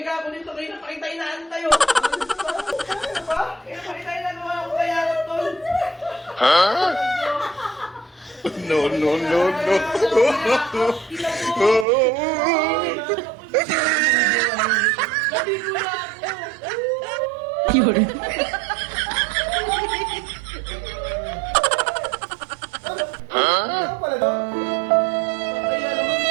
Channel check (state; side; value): drops out; left; at 11.9 s